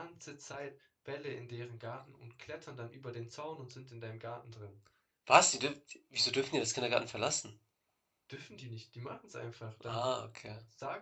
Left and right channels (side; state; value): both; identical; correlation 1.00